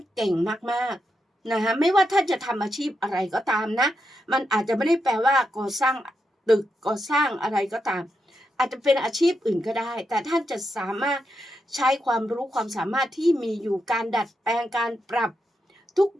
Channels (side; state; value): both; normal; correlation 0.84